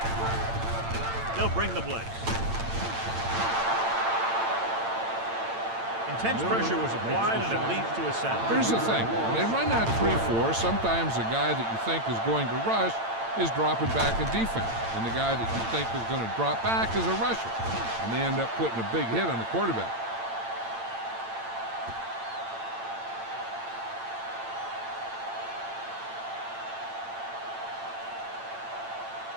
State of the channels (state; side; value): late; left; 8.8 ms